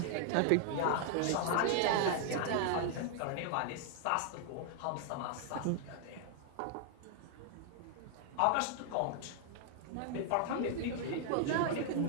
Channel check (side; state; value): both; different; correlation 0.00